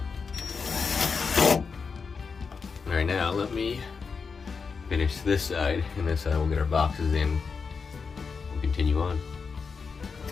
Alright, now let me finish this side, and this side we'll get our boxes in and continue on.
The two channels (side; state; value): right; quieter; 5.3 dB